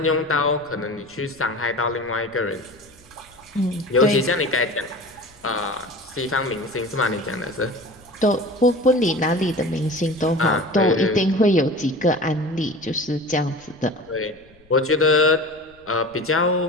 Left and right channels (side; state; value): left; noise; rumble, 30 dB below the sound